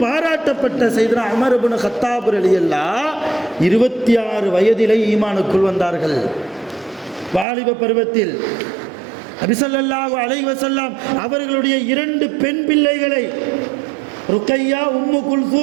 பாராட்டப்பட்ட சையதுனா உமர் இப்னு கத்தாப் ரலியல்லாஹு 26 வயதிலே ஈமானுக்குள் வந்தார்கள், வாலிப பருவத்தில். நபி ஸல்லல்லாஹு அலைஹி வஸல்லம் அவர்களுடைய 2 பெண் பிள்ளைகளை, ருக்கையா, உம்மு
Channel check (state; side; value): drops out; left; at 7.5 s